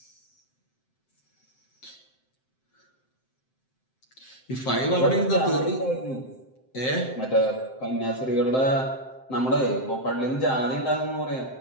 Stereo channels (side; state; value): right; late; 7.7 ms